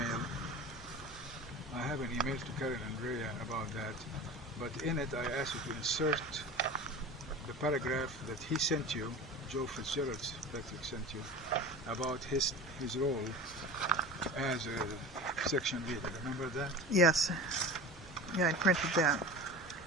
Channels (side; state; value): both; normal; correlation 0.33